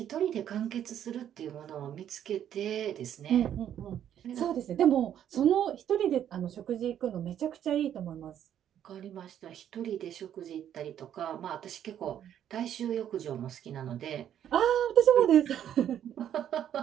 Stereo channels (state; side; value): quieter; left; 10.2 dB